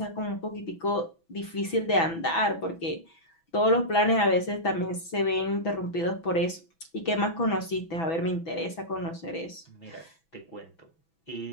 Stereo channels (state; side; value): late; right; 6.1 ms